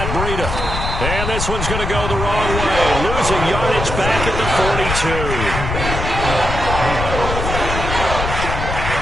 Breida. And this one's going to go the wrong way. Losing yardage back at the 42.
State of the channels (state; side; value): noise; left; rumble, 4 dB below the sound